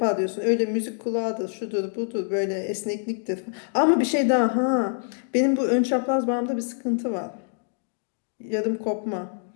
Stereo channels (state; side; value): silent; right; digital silence